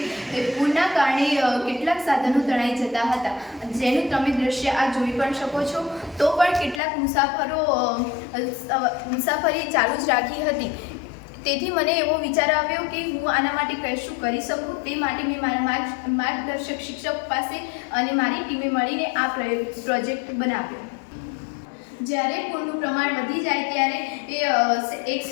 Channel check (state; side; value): drops out; right; at 6.8 s